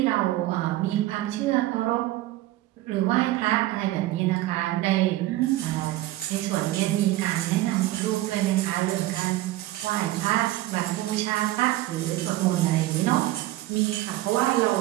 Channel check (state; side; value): quieter; left; 16.3 dB